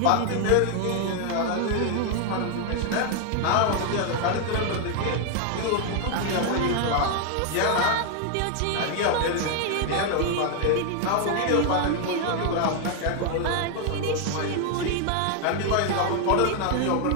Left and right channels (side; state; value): both; different; correlation 0.00